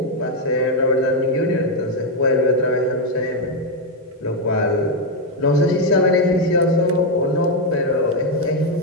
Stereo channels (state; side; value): normal; both; correlation 0.03